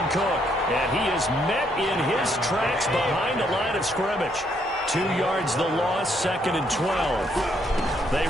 Cook. And he is met in his tracks behind the line of scrimmage. 2 yards the loss, 2nd and 12. They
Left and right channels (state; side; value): normal; both; correlation 0.72